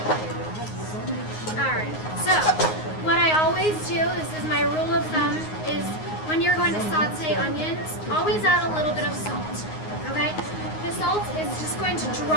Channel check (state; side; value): late; right; 9.5 ms